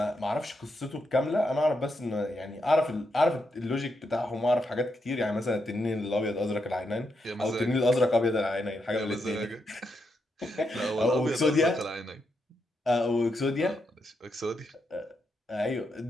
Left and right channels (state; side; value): normal; both; correlation 0.82